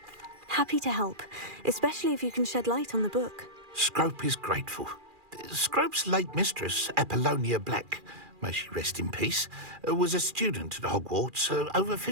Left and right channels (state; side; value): late; left; 2.4 ms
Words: Happy to help, especially if you can shed light on the book. Scrope is grateful. Scrope's late mistress, Apollonia Black, may she rest in peace, was a student at Hogwarts over